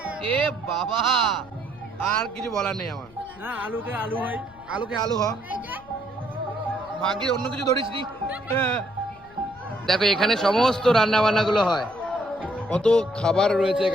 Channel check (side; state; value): left; noise; rumble, 24 dB below the sound